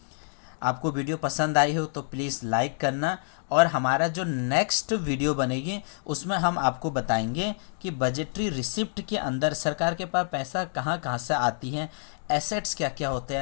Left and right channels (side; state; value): right; silent; digital silence